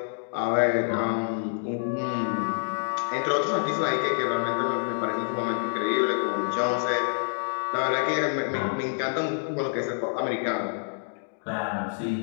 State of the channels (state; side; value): silent; right; digital silence